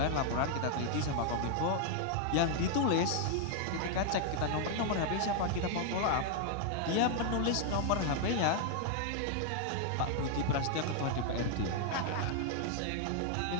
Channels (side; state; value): both; different; correlation 0.00